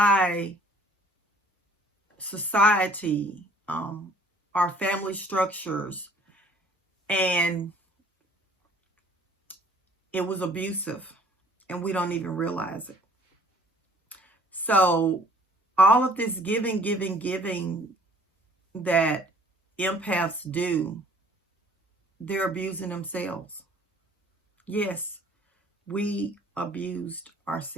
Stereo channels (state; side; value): normal; both; correlation 0.56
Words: society, our family structures, and it was abusive, and we don't even realize it. So all of this giving that empaths do, they're abusing themselves. Yes, we abused